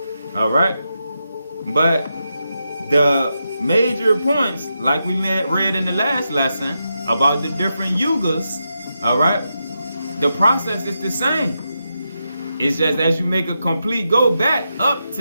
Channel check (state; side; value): inverted; both; correlation -0.86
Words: All right? But the major points, like we read in the last lesson about the different yugas, all right? The process is the same. It's just as you make a complete go back up